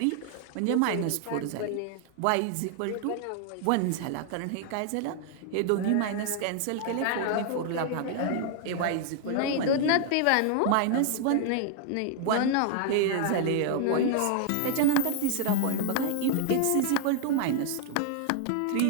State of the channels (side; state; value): both; different; correlation 0.00